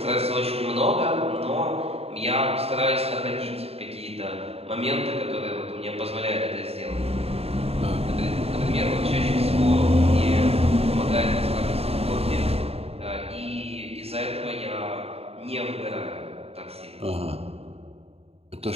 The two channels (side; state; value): left; late; 0.29 ms